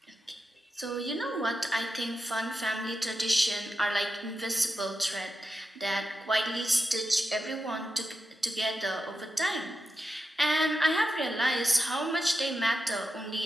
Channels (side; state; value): both; normal; correlation 0.88